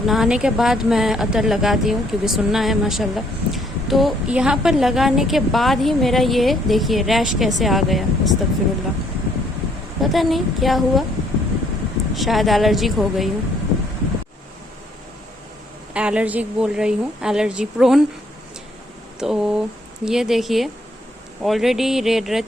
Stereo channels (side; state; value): both; normal; correlation 0.67